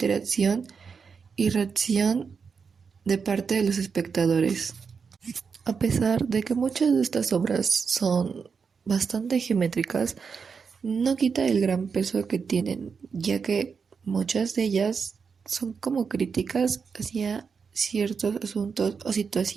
y reacción de parte de los espectadores. A pesar de que muchas de estas obras son bastante geométricas, no quita el gran peso que tienen, ya que muchas de ellas son como críticas hacia ciertos asuntos o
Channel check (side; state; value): left; quieter; 5.7 dB